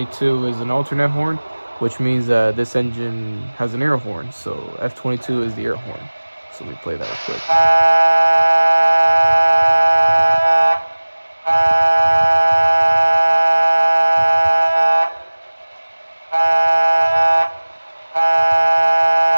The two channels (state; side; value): inverted; both; correlation -1.00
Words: is an alternate horn, which means that this engine has an air horn. So F22 is the air horn. So let me play that real quick.